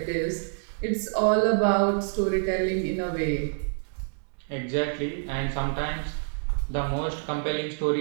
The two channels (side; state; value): left; silent; digital silence